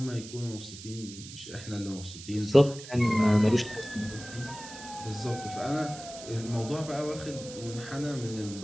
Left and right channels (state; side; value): noise; right; hiss, 14 dB below the sound